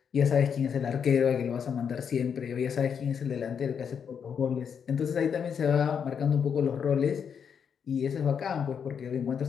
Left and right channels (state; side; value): quieter; right; 7.2 dB